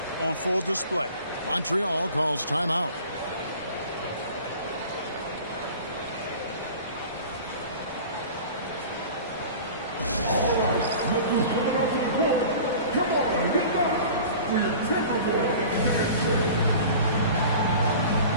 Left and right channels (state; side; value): inverted; both; correlation -0.41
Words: on full display. Montreal calls timeout. Come on, get back for your Timberwolves.